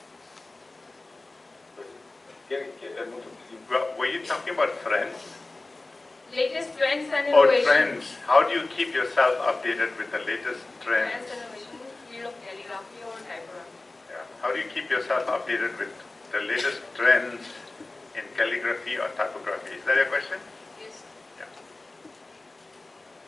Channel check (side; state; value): right; quieter; 3.1 dB